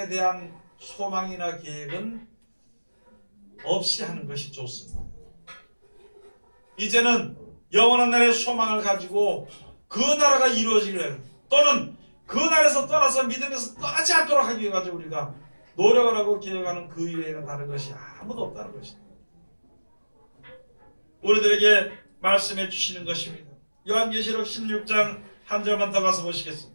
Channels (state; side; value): inverted; both; correlation -1.00